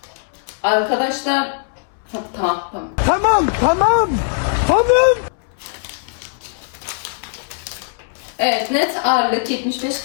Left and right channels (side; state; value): right; silent; 66 dB below the other